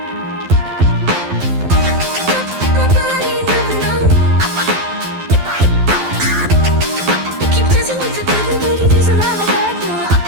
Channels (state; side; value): late; left; 11 ms